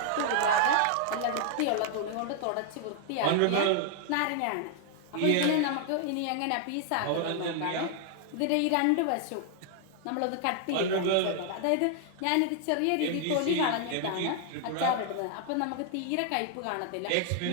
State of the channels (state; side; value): different; both; correlation 0.00